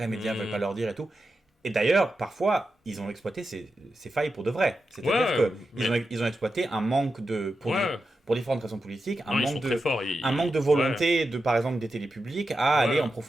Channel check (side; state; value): both; normal; correlation 0.90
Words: médias veulent pas leur dire et tout. Et d'ailleurs, parfois, ils ont exploité ces failles pour de vrai. C'est-à-dire qu'ils ont exploité un manque pour différentes raisons politiques, un manque de volonté, par exemple, des télés publiques à aller en